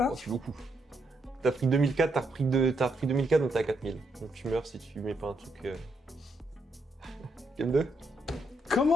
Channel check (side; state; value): both; normal; correlation 0.78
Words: Oh, c'est beaucoup. T'as pris 2004, t'as repris 2004, donc t'es à 4000. Donc tu meurs si tu mets pas un truc. Game 2.